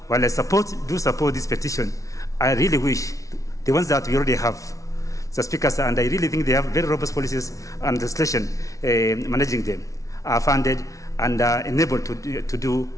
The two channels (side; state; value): right; late; 0.16 ms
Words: While I do support this petition, I really wish the ones that we already have, Mr. Speaker, and I really think they have very robust policies and legislation managing them, are funded and are enabled to do